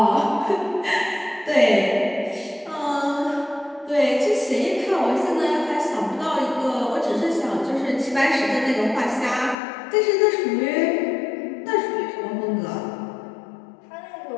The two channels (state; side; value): drops out; right; at 9.6 s